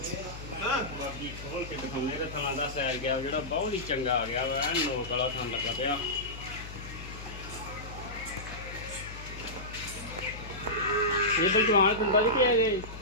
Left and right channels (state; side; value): noise; left; hum, 12 dB below the sound